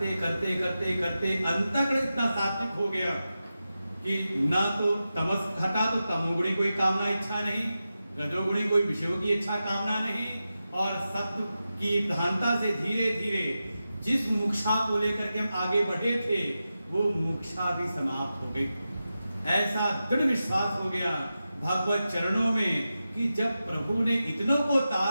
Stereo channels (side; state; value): both; inverted; correlation -0.92